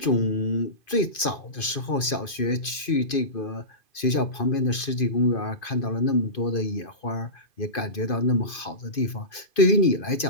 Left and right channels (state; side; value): late; right; 2.5 ms